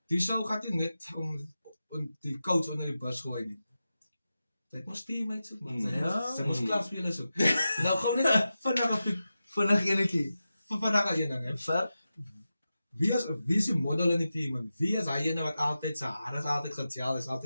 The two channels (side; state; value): both; inverted; correlation -0.92